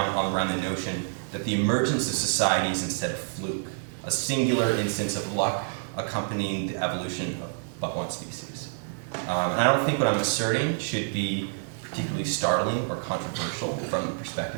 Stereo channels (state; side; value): silent; left; digital silence